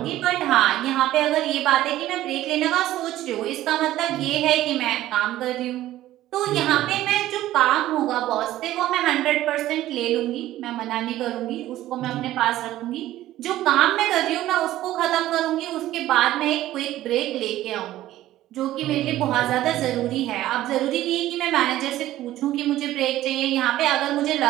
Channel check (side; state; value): left; quieter; 14.5 dB